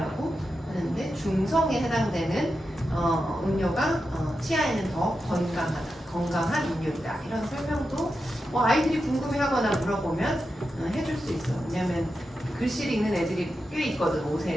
하는데 중성에 해당되는 음료가 치아에는 더 건강한 음료이다. 이런 설명도 뭐 아이들이 궁금해하거나 물어보면 해줄 수 있어. 왜냐면 글씨를 읽는 애들이 꽤 있거든.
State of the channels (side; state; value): both; normal; correlation 0.89